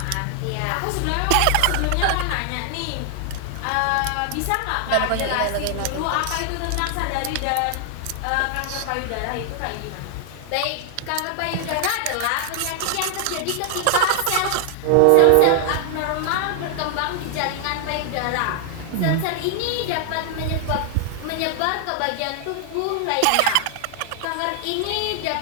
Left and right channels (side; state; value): both; different; correlation 0.00